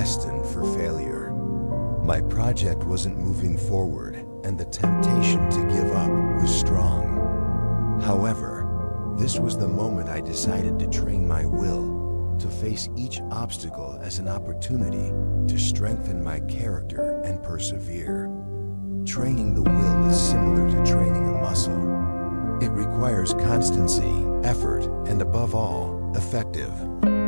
for failure. My project wasn't moving forward, and the temptation to give up was strong. However, this was the moment I decided to train my will to face each obstacle as an opportunity to strengthen my character and persevere. Training the will is similar to training a muscle. It requires constancy, effort, and above all, effective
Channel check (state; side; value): inverted; both; correlation -1.00